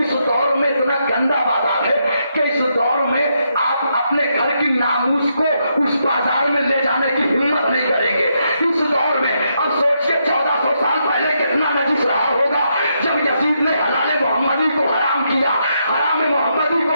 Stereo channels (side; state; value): both; inverted; correlation -0.79